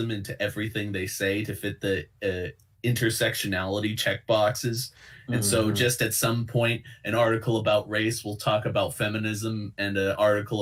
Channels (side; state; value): both; identical; correlation 1.00